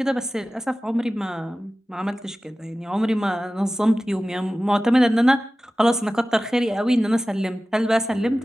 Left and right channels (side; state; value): both; normal; correlation 0.96